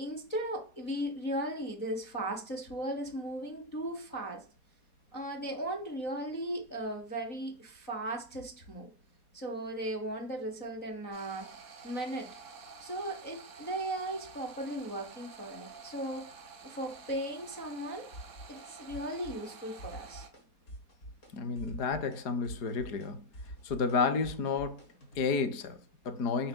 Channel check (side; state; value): right; late; 4.2 ms